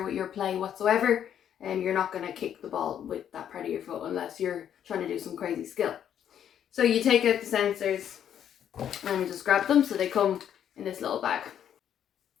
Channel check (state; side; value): quieter; right; 9.5 dB